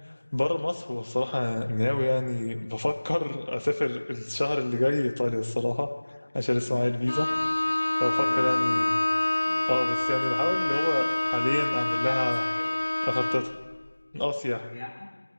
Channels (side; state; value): both; inverted; correlation -1.00